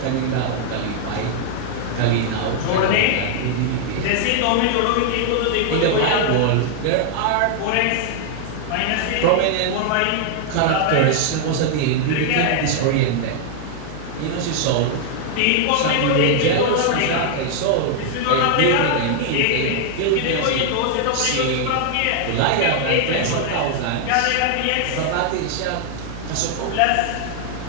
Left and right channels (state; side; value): different; both; correlation 0.00